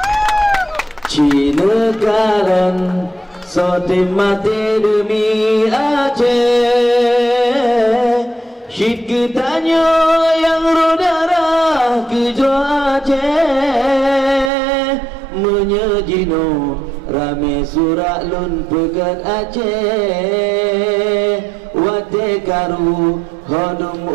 Cina karen sotim mati demi Aceh. Syid ketanyo yang rodara kejo Aceh. Menyejino rame surak lun pegat Aceh. Wate karu hodum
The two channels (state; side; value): drops out; left; at 14.5 s